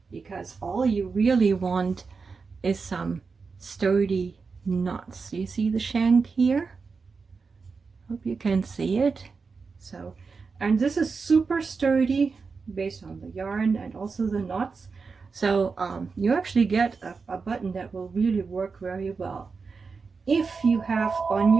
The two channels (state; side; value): quieter; left; 4.8 dB